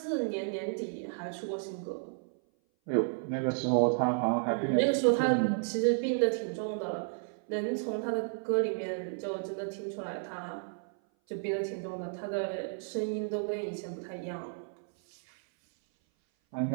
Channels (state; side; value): silent; left; 56 dB below the other